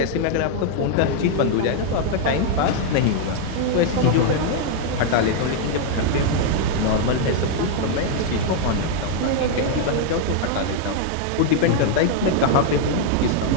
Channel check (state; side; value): different; both; correlation 0.00